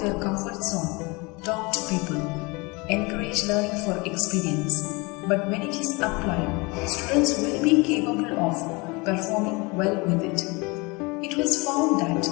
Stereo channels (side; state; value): right; quieter; 26.8 dB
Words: their comfort zone, talk to people, encourage learning for experience. But when it is applied, students will be capable of performing well with it. It was found that